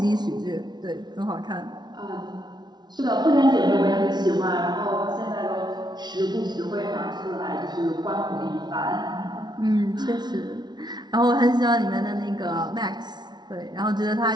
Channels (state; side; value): late; left; 0.20 ms